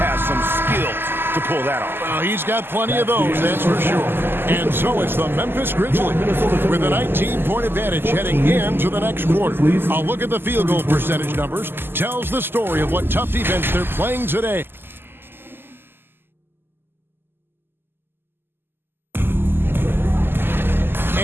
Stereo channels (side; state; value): left; late; 0.10 ms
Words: some skills to pull that off. Well, he's got plenty of those, that's for sure. And so it's the Memphis Grizzlies with a 19-point advantage heading into the next quarter. A look at the field goal percentage numbers tells the story of what tough defense they're playing today.